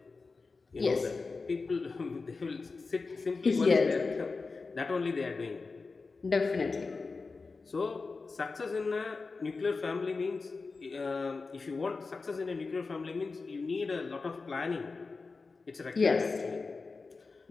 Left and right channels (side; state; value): right; quieter; 4.2 dB